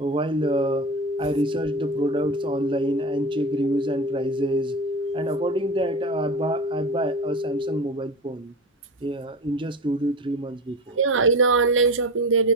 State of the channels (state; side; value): normal; both; correlation 0.26